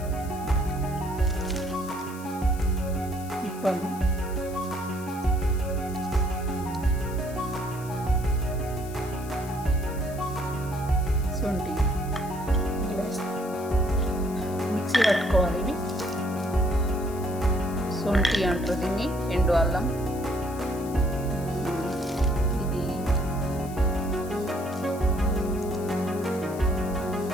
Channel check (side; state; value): left; noise; hiss, 18 dB below the sound